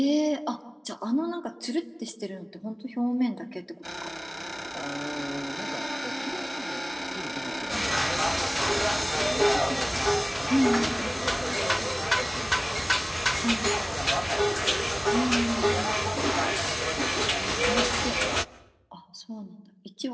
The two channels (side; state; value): both; identical; correlation 1.00